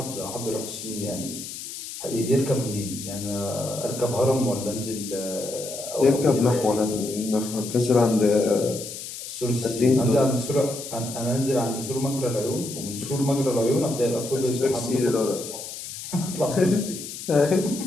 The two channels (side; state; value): left; noise; hiss, 10 dB below the sound